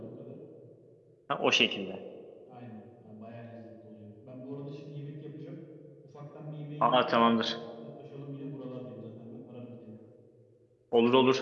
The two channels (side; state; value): both; identical; correlation 1.00